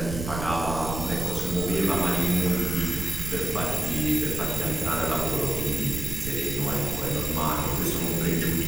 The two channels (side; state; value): right; noise; rumble, 6 dB below the sound